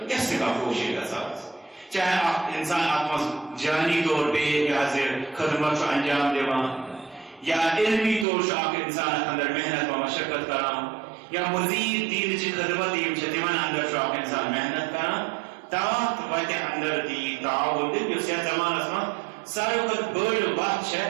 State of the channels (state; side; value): drops out; left; at 8.2 s